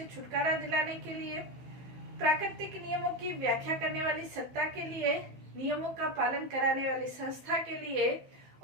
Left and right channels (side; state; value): left; late; 15 ms